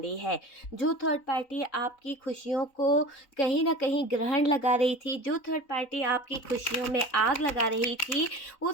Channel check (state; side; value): late; right; 3.9 ms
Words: है। जो थर्ड पार्टी आपकी खुशियों को कहीं ना कहीं ग्रहण लगा रही थी, जो थर्ड पार्टी आपकी खुशियों में आग लगा रही थी,